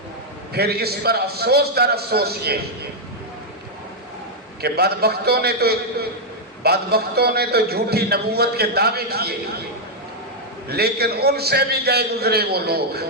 پھر اس پر افسوس در افسوس یہ کہ بدبختوں نے تو جھوٹی نبوت کے دعوے کیے، لیکن ان سے بھی گئے گزرے وہ لوگ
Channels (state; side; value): normal; both; correlation -0.02